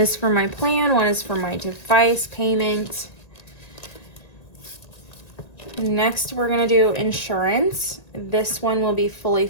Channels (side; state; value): right; late; 1.9 ms